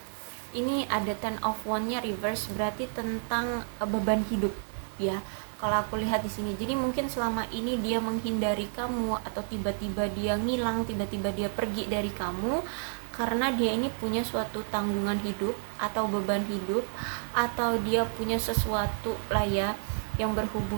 ini ada 10 of one-nya reverse, berarti tentang beban hidup ya. Kalau aku lihat di sini, jadi mungkin selama ini dia menghindari kamu, atau tiba-tiba dia ngilang, tiba-tiba dia pergi dari kamu karena dia ini punya suatu tanggungan hidup atau beban hidup, atau dia punya sesuatu lah ya yang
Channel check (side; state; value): left; silent; digital silence